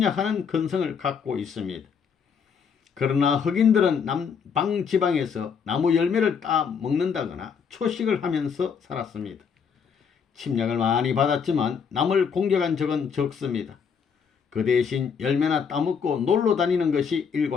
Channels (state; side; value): quieter; right; 6.5 dB